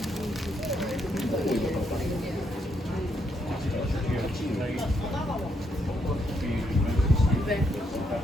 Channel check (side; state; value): both; normal; correlation 0.76